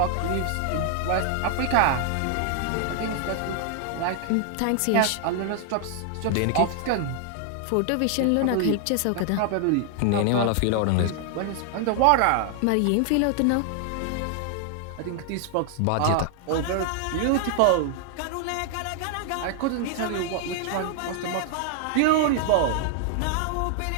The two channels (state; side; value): different; both; correlation 0.00